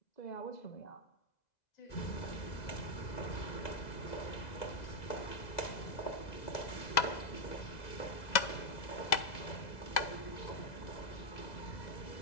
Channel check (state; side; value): late; right; 2.0 ms